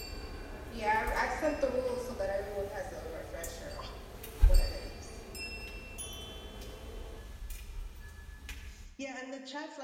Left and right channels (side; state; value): both; identical; correlation 1.00